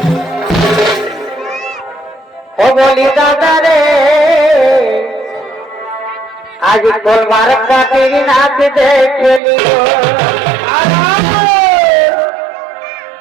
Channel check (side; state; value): left; drops out; at 9.4 s